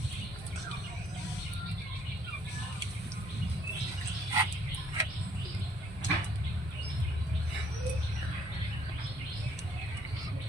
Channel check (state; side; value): normal; both; correlation 0.64